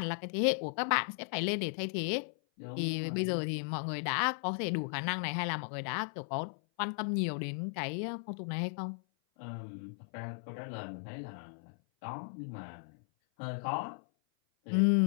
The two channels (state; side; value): silent; right; 54 dB below the other